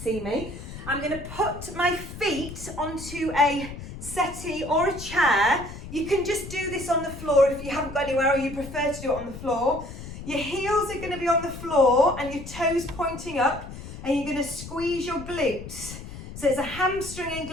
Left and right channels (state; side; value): noise; left; rumble, 12 dB below the sound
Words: me. I'm going to put my feet onto a settee or a chair. You can just do this on the floor if you haven't got anywhere or you prefer to do it on the floor. Your heels are going to be on the floor and your toes pointing up, and you're going to squeeze your glutes. So it's a hamstring and